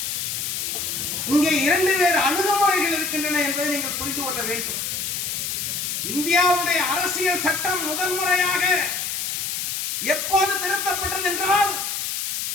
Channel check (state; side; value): noise; left; hiss, 2 dB below the sound